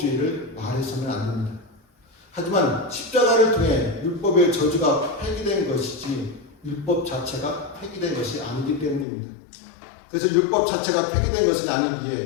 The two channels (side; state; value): right; drops out; at 9.1 s